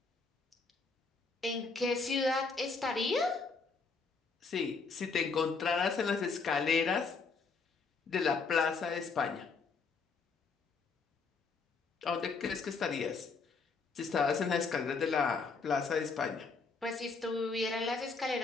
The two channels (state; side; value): quieter; right; 4.6 dB